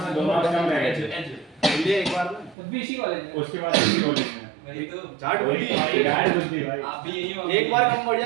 में 2 नंबर कम रहेगा ये एक बार भी इसी कॉलेज में, उसके बाद इसी कॉलेज में एक तो जाट होती है, गाइड होती है भाई। आप भी यही हो, एक बार कम बढ़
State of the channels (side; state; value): left; drops out; at 2.6 s